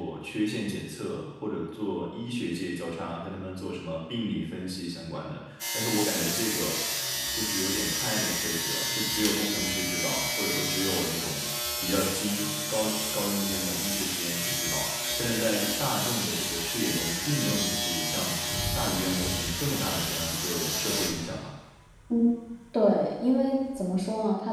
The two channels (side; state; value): both; identical; correlation 1.00